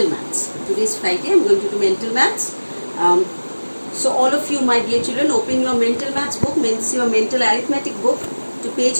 maths. Today is Friday. I am going to do mental maths. So all of you, my dear children, open your mental maths book, means your mental arithmetic book, to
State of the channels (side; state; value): both; inverted; correlation -1.00